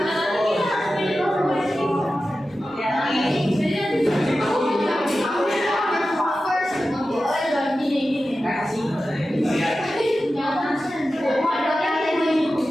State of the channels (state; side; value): normal; both; correlation 0.93